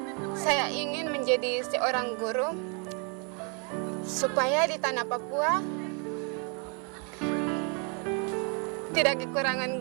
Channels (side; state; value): left; quieter; 36.9 dB